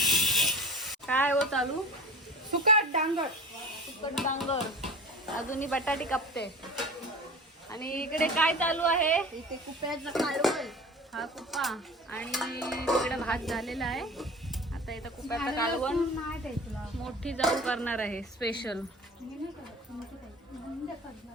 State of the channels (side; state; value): both; normal; correlation 0.36